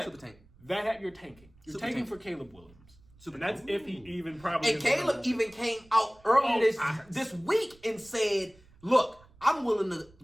Super tank. that you're tanking. You're Super tanking tank. for Caleb Williams. Super And that's if he even probably. And Caleb even came out earlier this week and said, "Look, I'm willing to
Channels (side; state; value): right; noise; rumble, 27 dB below the sound